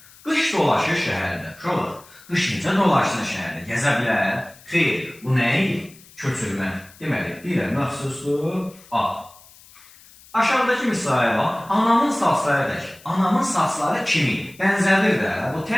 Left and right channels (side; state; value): left; noise; hiss, 24 dB below the sound